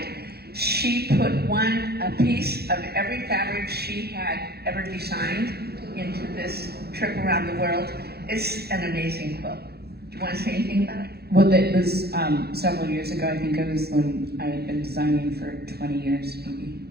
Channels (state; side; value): late; left; 0.46 ms